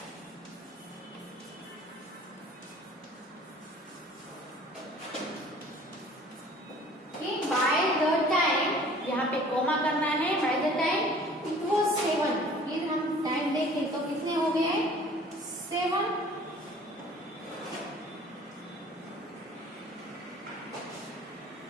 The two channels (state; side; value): normal; both; correlation 0.50